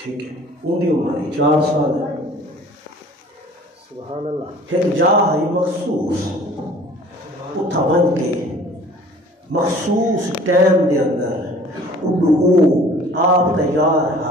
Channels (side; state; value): both; normal; correlation 0.49